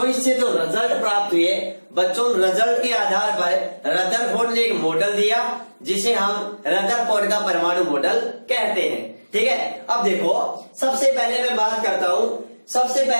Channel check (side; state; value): both; inverted; correlation -1.00